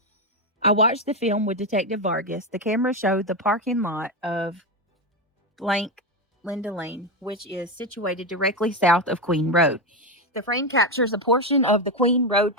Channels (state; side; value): normal; both; correlation 0.11